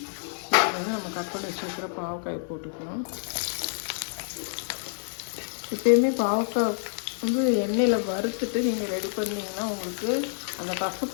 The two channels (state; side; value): silent; right; 56 dB below the other